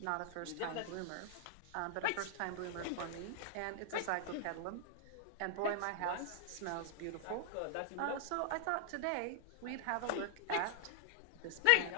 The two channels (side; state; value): both; different; correlation 0.00